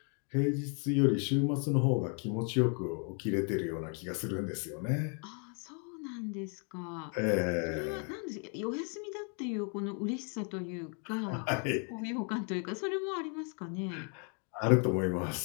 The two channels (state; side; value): quieter; right; 39.6 dB